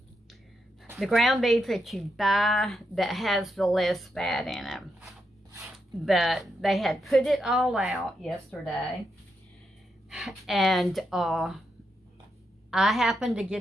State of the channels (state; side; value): normal; both; correlation 0.83